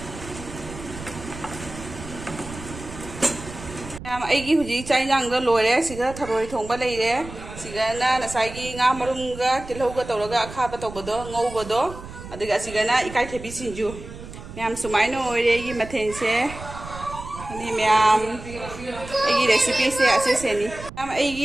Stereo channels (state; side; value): noise; right; rumble, 13 dB below the sound